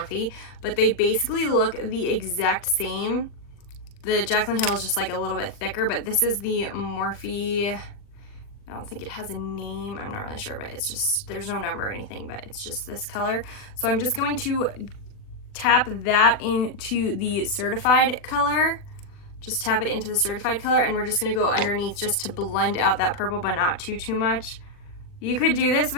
but they basically look the exact same. The Jaclyn Hill is just like a little bit thicker, but this is the Morphe. I don't think it has a name. I'm not really sure, but it's just, there's no number or anything, but it's just this color. So I'm just going to tap that into the certified color. Just tap it into the certified color, and we're just gonna go underneath just to blend out that purple, but not too much. You could do this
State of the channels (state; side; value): late; right; 40 ms